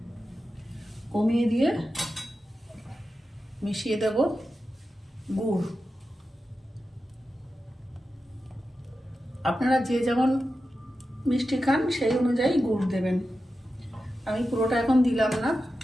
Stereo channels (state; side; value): normal; both; correlation 0.91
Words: কমিয়ে দিয়ে মিশিয়ে দেব গুড়। আপনারা যে যেমন মিষ্টি খান সেই অনুযায়ী গুড় দেবেন। আমি পুরোটা এখন দিলাম না,